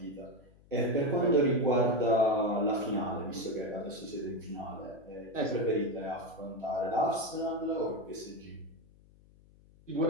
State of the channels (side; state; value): left; noise; hum, 27 dB below the sound